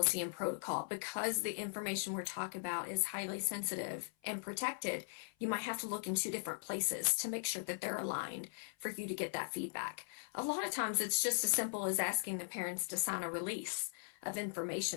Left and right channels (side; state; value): right; silent; 51 dB below the other